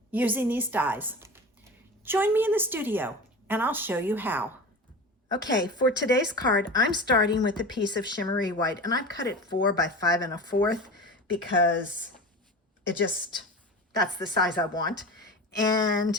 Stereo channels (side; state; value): both; normal; correlation 0.31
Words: using these dies. Join me in the studio and I'll show you how. Okay, for today's card, I'm starting with a piece of shimmery white, and I've cut it 4 by 5 1/4 because that's the size I want.